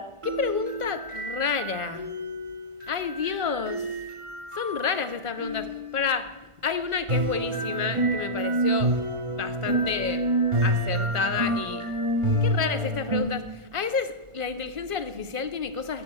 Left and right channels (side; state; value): left; late; 1.5 ms